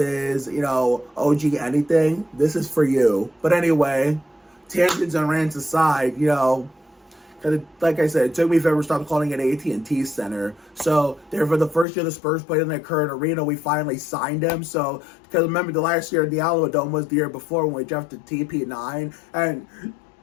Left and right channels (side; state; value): right; drops out; at 11.9 s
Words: you know, OG anything, this is for you. But anyway, tangents and rants aside, you know, like I said, it took me forever to stop calling it AT&T Center. So, therefore, the first year the Spurs played in their current arena, we finally signed him. So, because remember, the last year the Alamo Dome was the year before when we drafted TP9, and